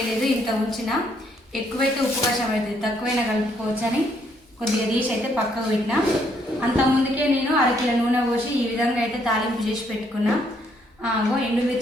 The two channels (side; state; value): both; normal; correlation 0.70